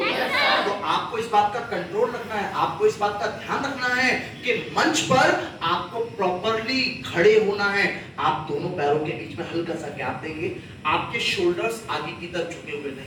तो आपको इस बात का कंट्रोल रखना है, आपको इस बात का ध्यान रखना है कि मंच पर आपको प्रॉपरली खड़े होना है। आप दोनों पैरों के बीच में हल्का सा गैप देंगे, आपके शोल्डर्स आगे की तरफ झुके हुए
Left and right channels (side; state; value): both; identical; correlation 1.00